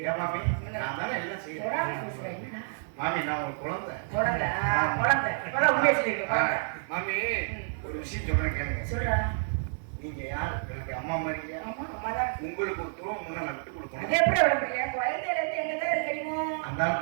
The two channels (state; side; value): silent; left; digital silence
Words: ஏன் மாமி நான் தானே எல்லாம் செய்யறேன். மாமி நான் ஒரு குழந்தை. குழந்தை, குழந்தை. இப்பதான் உண்மையை சொல்லிருக்க குழந்தை. மாமி ஒரு விஷயம் சொல்றேன் கேளுங்க. சொல்றா. நீங்க யார்? எனக்கு அம்மா மாதிரி இல்லையா? ஆமா, அம்மாதான். உங்களுக்கு ஒரு துரோகம் முன்ன நான் விட்டு அது கொடுக்கணும். எப்படி விட முடியும்? குழந்தையில இருந்து எங்கதான் இருக்கீங்க? அந்த